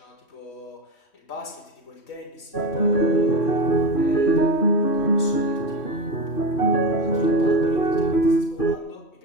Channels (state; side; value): late; right; 3.1 ms